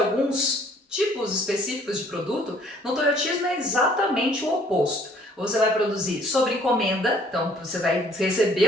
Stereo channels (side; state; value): both; normal; correlation 0.59